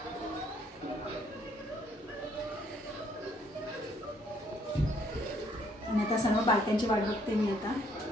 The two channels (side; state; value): both; normal; correlation 0.67